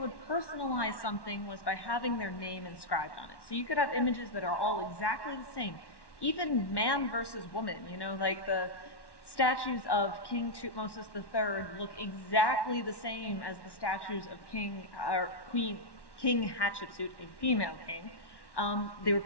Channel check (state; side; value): late; right; 1.1 ms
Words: personalize something was by having their name inscribed on it. So you could have images that are all exactly the same, even man versus woman, like the statues of King Tutmosis III look exactly the same as the statues of King Hatshepsut, a female king. They were